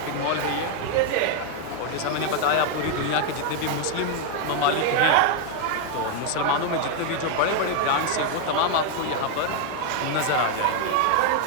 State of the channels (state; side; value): different; both; correlation 0.00